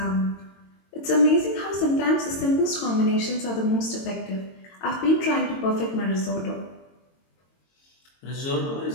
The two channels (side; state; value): right; late; 22 ms